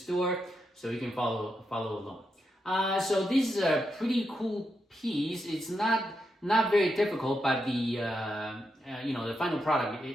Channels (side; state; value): both; normal; correlation 0.84